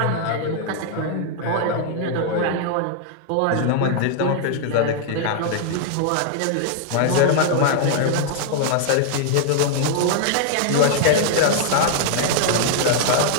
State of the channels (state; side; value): different; both; correlation 0.00